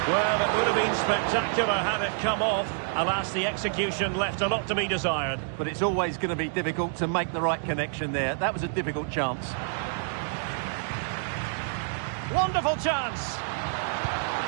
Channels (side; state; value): left; silent; digital silence